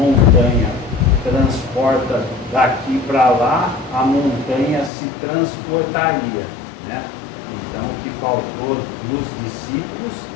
transporta daqui para lá, a montanha se transportaria, Então o que faltou nos discípulos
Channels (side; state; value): right; drops out; at 4.9 s